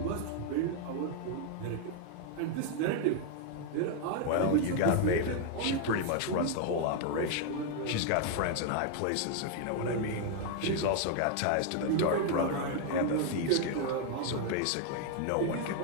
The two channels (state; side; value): different; both; correlation 0.00